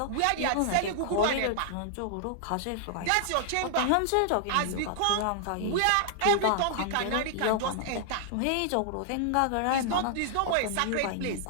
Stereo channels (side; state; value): both; different; correlation -0.01